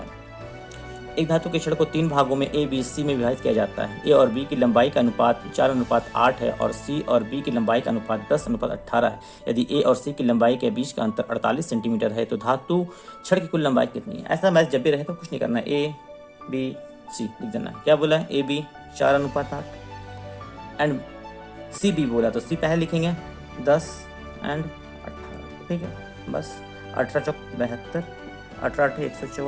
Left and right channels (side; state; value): both; identical; correlation 1.00